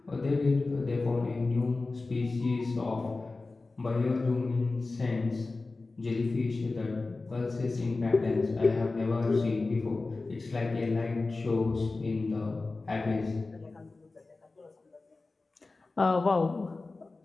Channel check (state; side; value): quieter; right; 3.5 dB